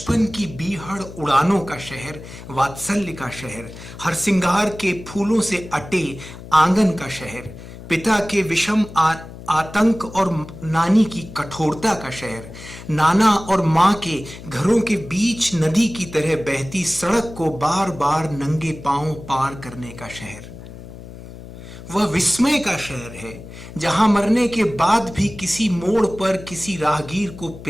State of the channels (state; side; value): noise; left; hum, 15 dB below the sound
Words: की बीहड़ उड़ानों का शहर, वात्सल्य का शहर, हरसिंगार के फूलों से अटे आंगन का शहर, पिता के विषम आतंक और नानी की कठोरता का शहर, नाना और मां के घरों के बीच नदी की तरह बहती सड़क को बार बार नंगे पांव पार करने का शहर। वह विस्मय का शहर है जहां मरने के बाद भी किसी मोड़ पर किसी राहगीर को